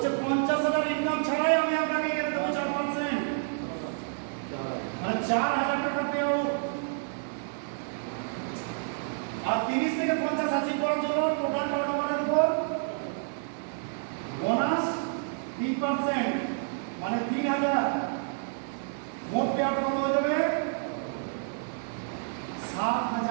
50,000 ইনকাম ছাড়াই আমি আপনাকে এখানে দেবো 4%, মানে 4,000 টাকা পেও। আর 30 থেকে 50 অ্যাচিভ করার জন্য টোটাল টার্নওভারের উপর বোনাস 3%, মানে 3,000। মোট পে আউট কত হয়ে যাবে?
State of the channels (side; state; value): left; silent; 57 dB below the other